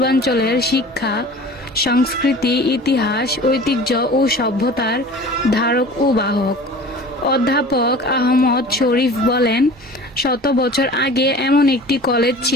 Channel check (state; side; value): normal; both; correlation 0.41